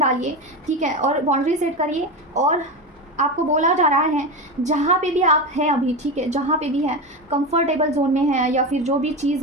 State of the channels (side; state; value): both; normal; correlation 0.20